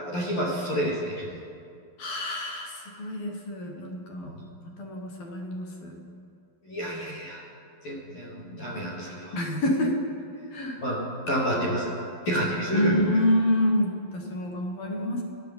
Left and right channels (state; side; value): late; right; 11 ms